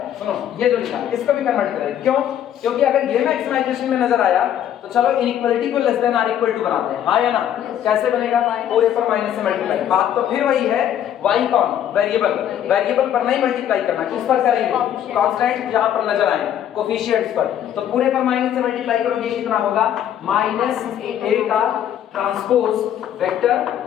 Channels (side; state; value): right; quieter; 10.4 dB